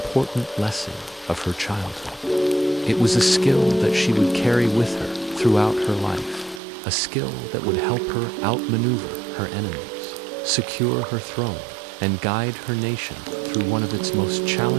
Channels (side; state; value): left; drops out; at 6.6 s